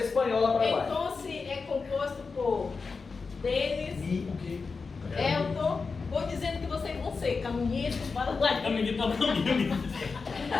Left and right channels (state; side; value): quieter; right; 4.6 dB